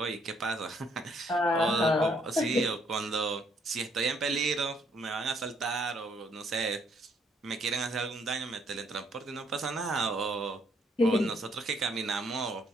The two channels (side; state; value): both; normal; correlation 0.68